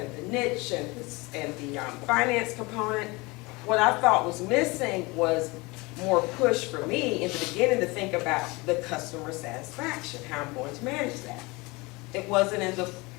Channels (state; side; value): quieter; right; 24.6 dB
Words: the niche and the finance component. What I thought was missing was more push for me in the beginning to think about the customer satisfaction, how I'm going to manage that. It was in